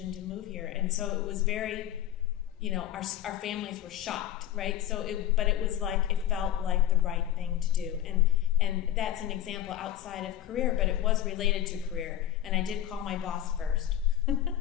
to move here. And so it was very, our families were shocked, right? But it was like, it felt like the right thing to do. And that's an example outside of career, but it was related to career. And I did call my boss first.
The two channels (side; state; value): right; quieter; 11.8 dB